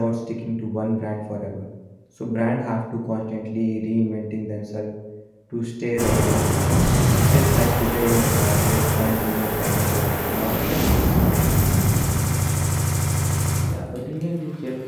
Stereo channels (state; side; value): identical; both; correlation 1.00